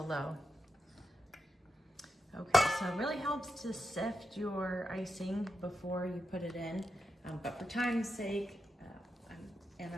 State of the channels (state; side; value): normal; both; correlation 0.86